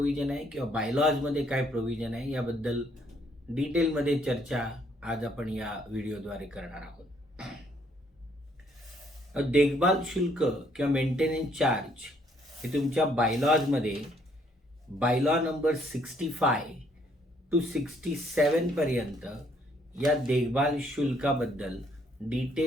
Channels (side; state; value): both; normal; correlation 0.67